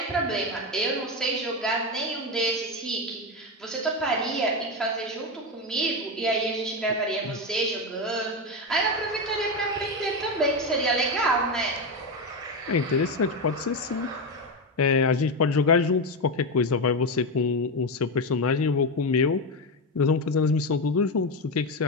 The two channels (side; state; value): both; normal; correlation 0.13